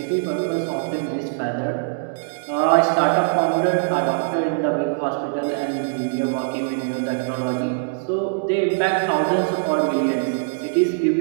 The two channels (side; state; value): left; silent; digital silence